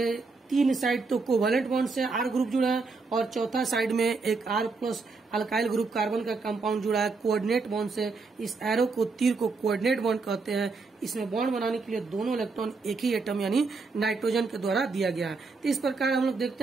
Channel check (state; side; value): quieter; left; 4.2 dB